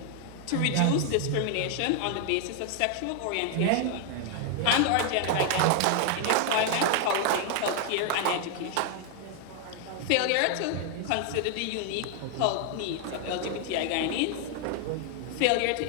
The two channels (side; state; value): both; different; correlation 0.00